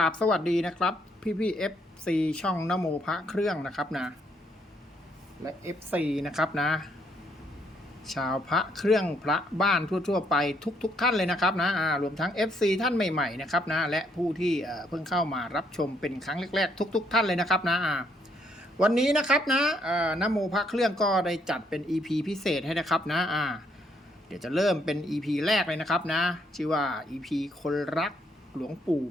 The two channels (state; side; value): normal; both; correlation 0.71